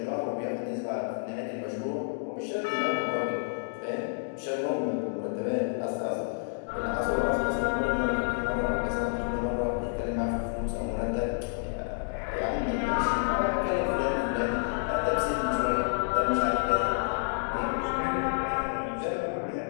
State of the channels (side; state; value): right; silent; digital silence